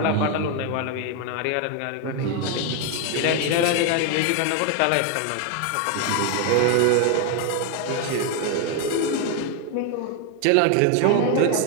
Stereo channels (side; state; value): both; different; correlation 0.01